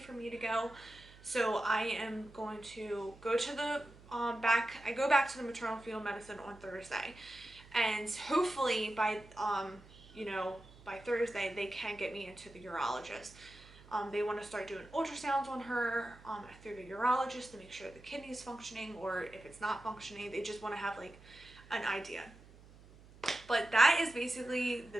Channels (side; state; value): right; noise; hum, 22 dB below the sound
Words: for me to go. So I am going to go to the I go back to the maternal fetal medicine on Thursday, and hopefully by you know, by Thursday they can get me into the urologist. They want to start doing ultrasounds on her through the urologist to make sure the kidney's functioning, or if it's not functioning, they just want to have like an idea. But that is basically the